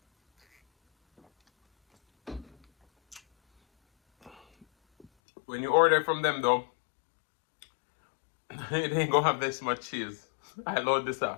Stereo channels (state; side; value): drops out; right; at 5.1 s